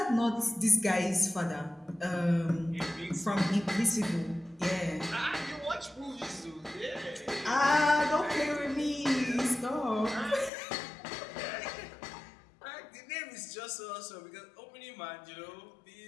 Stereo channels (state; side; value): drops out; right; at 10.5 s